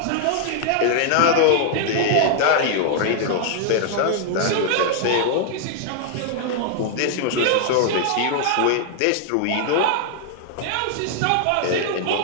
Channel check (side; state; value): both; different; correlation 0.00